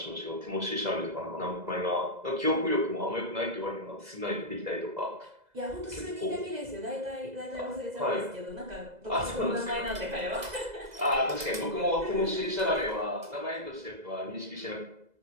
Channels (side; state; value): left; late; 2.0 ms